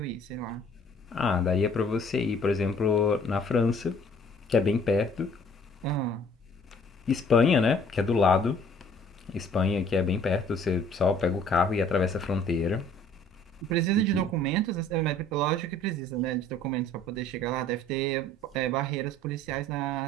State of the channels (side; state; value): both; normal; correlation 0.55